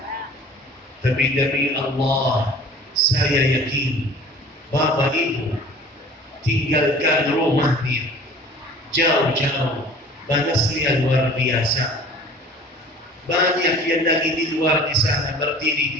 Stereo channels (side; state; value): both; normal; correlation 0.46